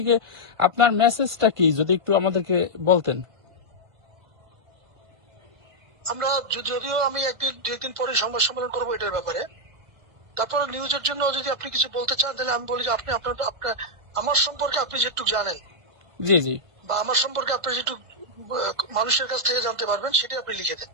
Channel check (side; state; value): left; late; 1.5 ms